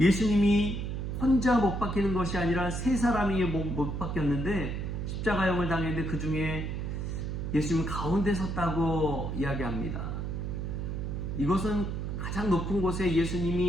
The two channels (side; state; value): right; noise; hum, 3 dB below the sound